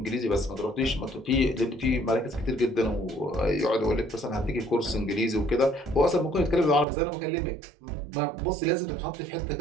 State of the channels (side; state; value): left; drops out; at 6.9 s